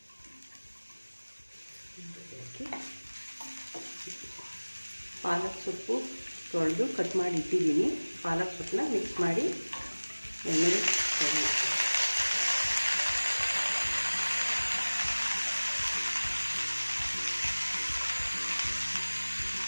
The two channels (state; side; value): inverted; both; correlation -1.00